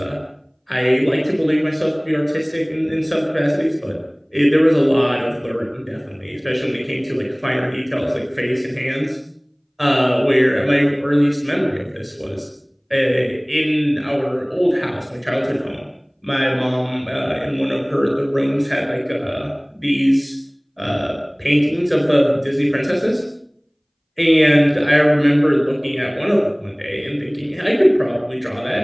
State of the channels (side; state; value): both; identical; correlation 1.00